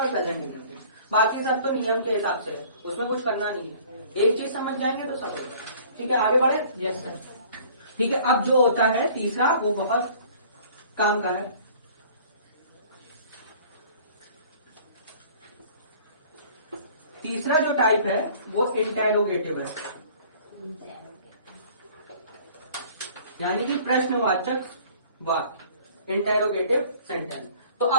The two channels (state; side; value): inverted; both; correlation -0.51